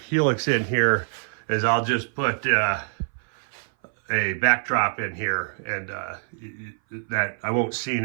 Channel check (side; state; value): left; silent; 58 dB below the other